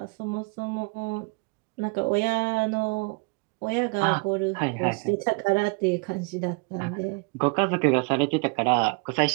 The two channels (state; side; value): quieter; left; 30.4 dB